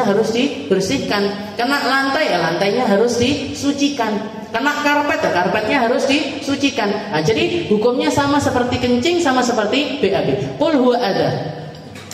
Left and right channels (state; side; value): identical; both; correlation 1.00